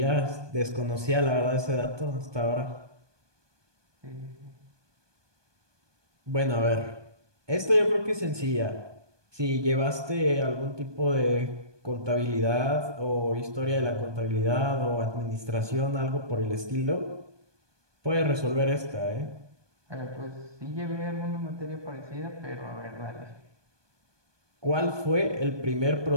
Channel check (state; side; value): late; left; 1.2 ms